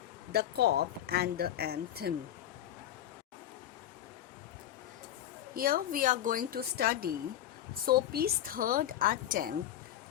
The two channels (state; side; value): quieter; right; 11.8 dB